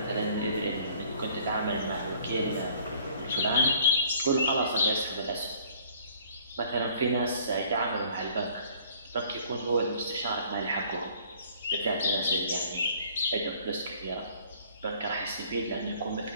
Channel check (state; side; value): inverted; both; correlation -0.55